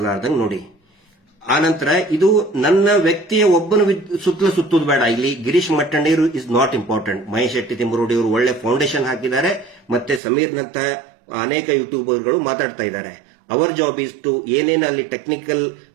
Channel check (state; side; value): drops out; left; at 10.2 s